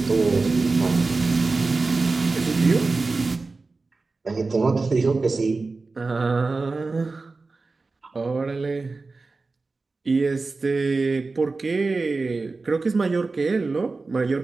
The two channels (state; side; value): quieter; left; 3.8 dB